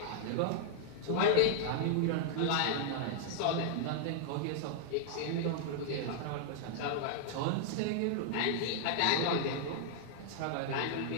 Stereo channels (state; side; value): different; both; correlation -0.01